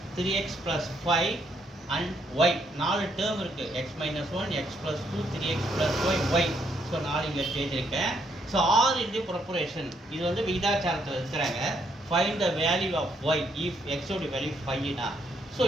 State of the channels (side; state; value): both; normal; correlation 0.73